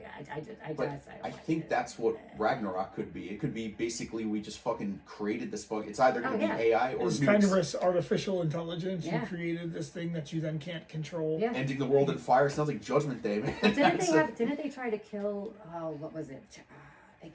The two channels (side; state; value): both; identical; correlation 1.00